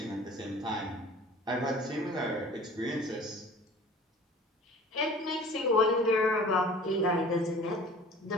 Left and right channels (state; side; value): normal; both; correlation 0.46